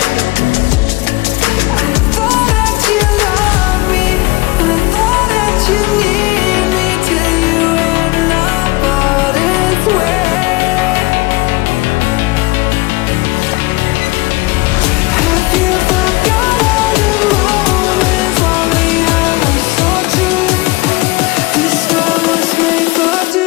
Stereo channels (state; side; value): quieter; right; 22.5 dB